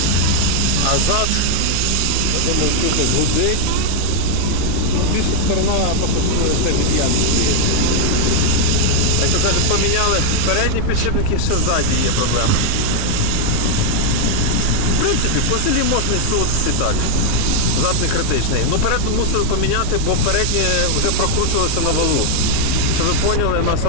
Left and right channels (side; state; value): both; different; correlation 0.00